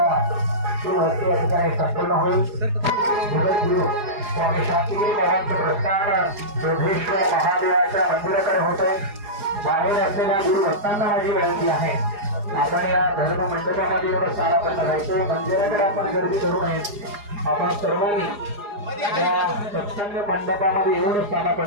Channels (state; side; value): late; left; 4.8 ms